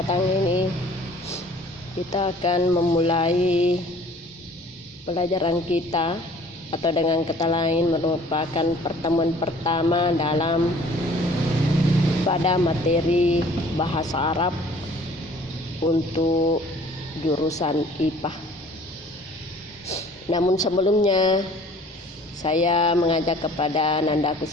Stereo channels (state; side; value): normal; both; correlation 0.52